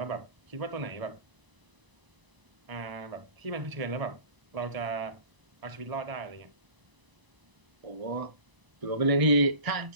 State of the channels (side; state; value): left; late; 1.0 ms